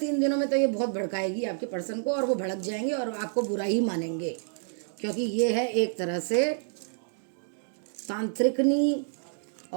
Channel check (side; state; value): left; silent; digital silence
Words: दिनों में तो ये बहुत भड़काएगी आपके पर्सन को, और वो भड़क जाएंगे और आपको बुरा ही मानेंगे, क्योंकि ये है एक तरह से तांत्रिकनी